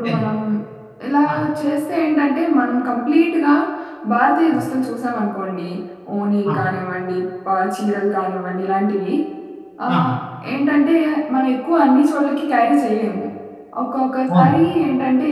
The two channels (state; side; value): identical; both; correlation 1.00